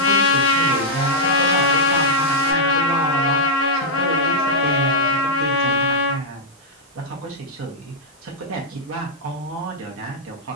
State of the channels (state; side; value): normal; both; correlation -0.06